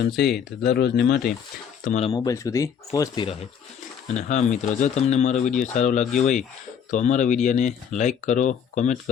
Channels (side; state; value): right; quieter; 7.8 dB